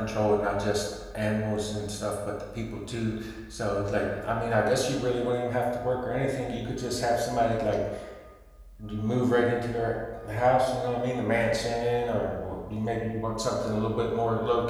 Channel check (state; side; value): identical; both; correlation 1.00